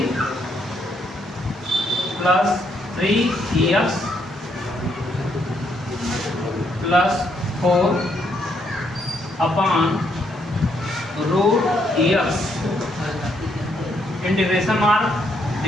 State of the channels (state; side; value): normal; both; correlation 0.74